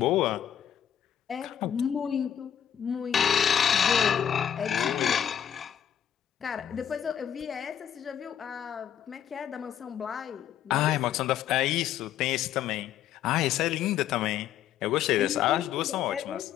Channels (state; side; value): quieter; right; 9.6 dB